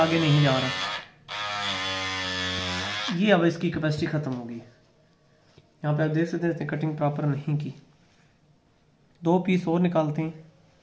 नहीं जा रहा। ये अब इसकी कैपेसिटी ख़त्म होगी। यहाँ पे आप देख सकते हैं कटिंग प्रॉपर नहीं की। 2 पीस और निकालते हैं,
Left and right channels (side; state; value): both; identical; correlation 1.00